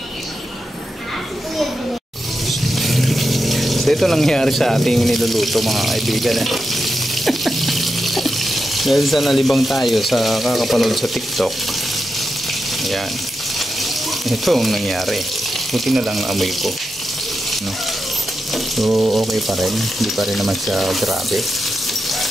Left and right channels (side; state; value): both; normal; correlation 0.88